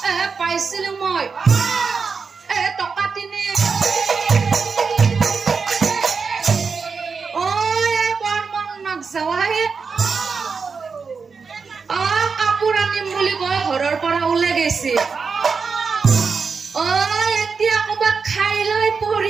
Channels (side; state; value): left; quieter; 5.2 dB